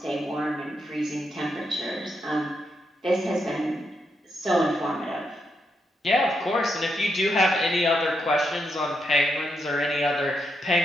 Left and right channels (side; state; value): both; normal; correlation 0.81